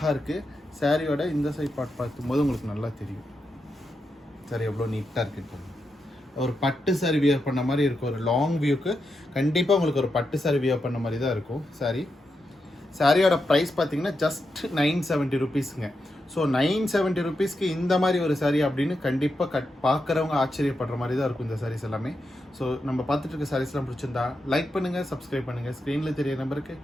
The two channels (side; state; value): both; normal; correlation 0.86